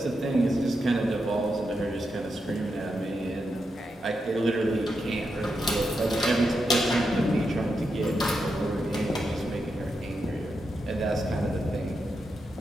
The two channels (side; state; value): both; normal; correlation 0.86